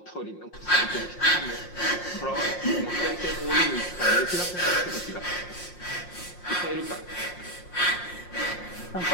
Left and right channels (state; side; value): late; right; 5.6 ms